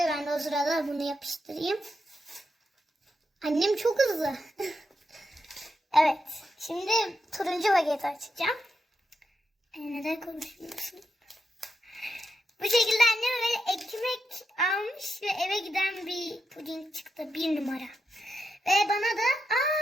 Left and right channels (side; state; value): both; normal; correlation 0.86